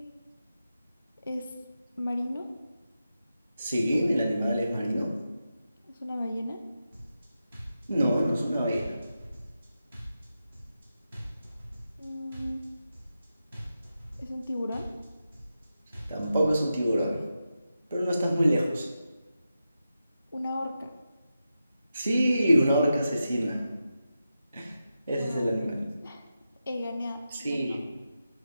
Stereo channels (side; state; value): both; inverted; correlation -0.90